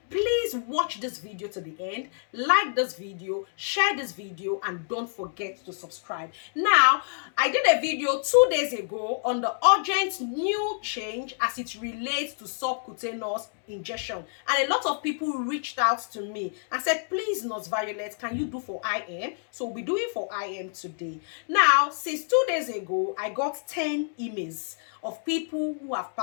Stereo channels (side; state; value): right; silent; digital silence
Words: please watch this video to the end, like this video, share this video, and don't forget to subscribe. Now, I did a video 2 days ago on the urgent new change as it relates to subcutaneous injection, and a lot of people reached out to me and said, please, Nurse Violet, can you do for IM? So we'll be doing for IM today. Now, since 2 days ago, I got 10 emails of people who have